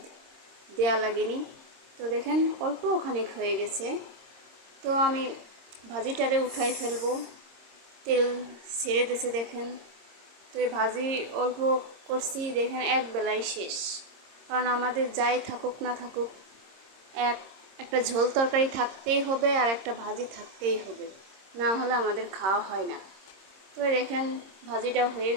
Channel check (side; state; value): left; late; 26 ms